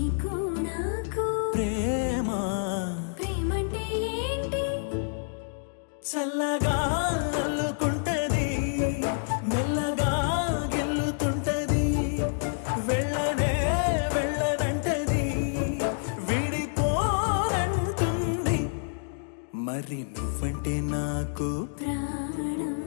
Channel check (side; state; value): right; silent; digital silence